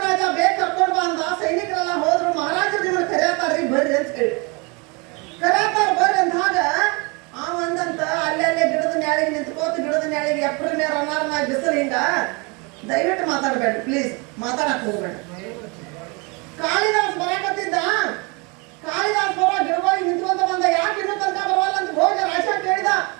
ಬೇಗ ಕರ್ಕೊಂಡು ಬಂದ. ಸೈನಿಕರೆಲ್ಲ ಹೋದ್ರು, ಮಹಾರಾಜರು ನಿಮ್ಮನ್ನ ಕರೆಯತಾರ್ರಿ ಬರ್ರಿ ಅಂತ ಹೇಳಿ ಕರೆಯತಾರ ಬರ್ರಿ ಅಂದಾಗ ಅವಂದಂತ ಅಲ್ಲೇ ಗಿಡದ ನ್ಯಾಳಿಗೆ ನಿಂತ್ಕೋತ ಗಿಡದ ನ್ಯಾಳಿಗೆ ಎಪ್ರಿಲ್ ಮೇ ರನ್ನಾರ ಬಿಸಿಲು ಹಿಂಗ ದಯವಿಟ್ಟು ಮಾತಾಡ್ಬೇಡ್ರಿ ಪ್ಲೀಸ್, ಮಾತಾಡಕ್ ಹೋಗ್ಬೇಡ. ಕಾಳಿದಾಸ್ ಬರಾಕತ್ತಿದ್ದ. ಕಾಳಿದಾಸ್ ಬರೋ ಗಿಡವಾಗಿ ನಿಂತ್ಕೊಂತ ಬಂದ. ಯಾಕೆ ಇನ್ನೂ ತನಕ ಬರವಲ್ಲ ಅಂತ ಭೋಜರಾಜ ಕೇಳಿದ.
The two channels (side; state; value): left; quieter; 29.8 dB